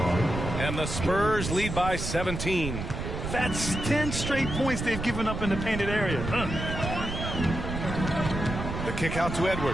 And the Spurs lead by 17. That's 10 straight points they've given up in the painted area. The kick out to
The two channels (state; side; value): noise; right; rumble, 5 dB below the sound